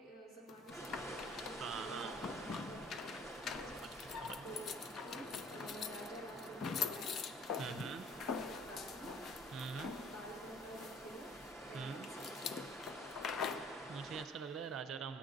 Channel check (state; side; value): normal; both; correlation 0.55